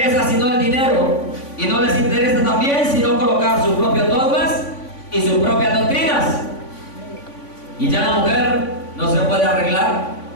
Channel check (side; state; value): right; late; 3.5 ms